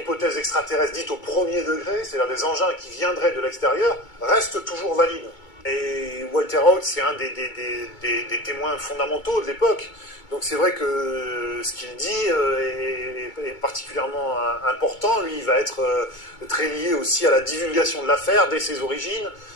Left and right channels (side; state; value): right; late; 2.2 ms